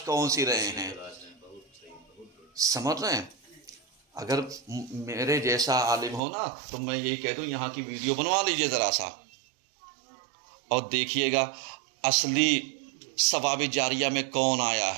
کون سی رہے ہیں۔ سمجھ رہے ہیں؟ اگر میرے جیسا عالم ہو نا تو میں یہی کہہ دوں یہاں کی ویڈیو بنوا لیجئے ذرا سا، اور دیکھیے گا اصلی ثواب جاریہ میں کون آیا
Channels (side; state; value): left; drops out; at 6.2 s